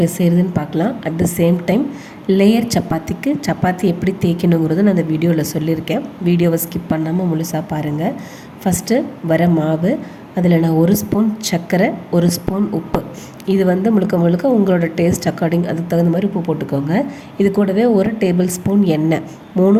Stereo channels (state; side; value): identical; both; correlation 1.00